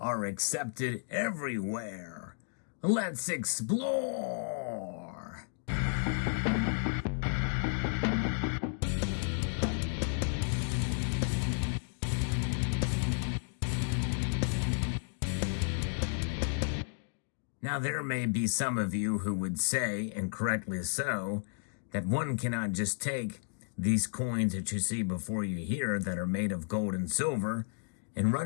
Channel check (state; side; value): silent; right; digital silence